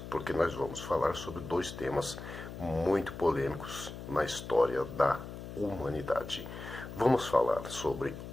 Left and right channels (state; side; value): noise; left; hum, 10 dB below the sound